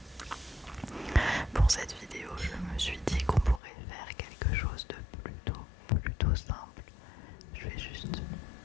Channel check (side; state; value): right; drops out; at 3.6 s